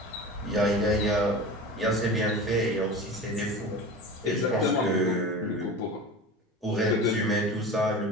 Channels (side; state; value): both; normal; correlation 0.33